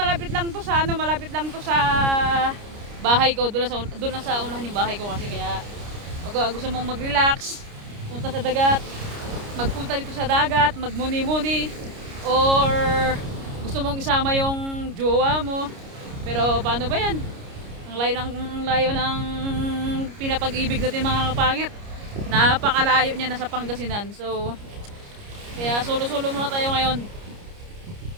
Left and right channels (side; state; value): left; late; 29 ms